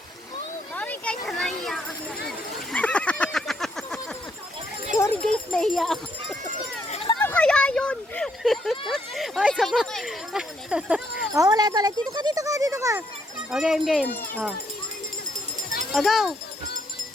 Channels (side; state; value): both; normal; correlation 0.73